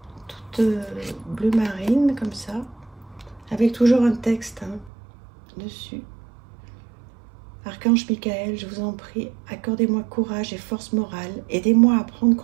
Toutes bleu marine, comme ça. Avec toujours un texte hein, dessus. Archange Michael, je vous en prie, accordez-moi courage et force morale. Aidez-moi à prendre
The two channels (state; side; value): drops out; left; at 4.9 s